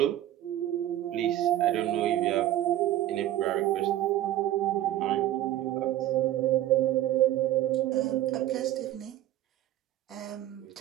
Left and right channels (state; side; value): quieter; left; 13.4 dB